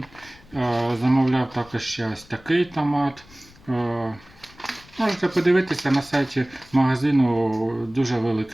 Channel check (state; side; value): noise; left; rumble, 25 dB below the sound